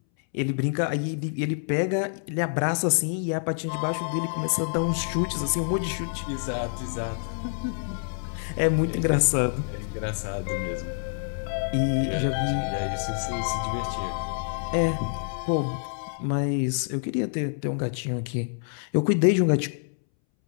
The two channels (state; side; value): silent; right; 60 dB below the other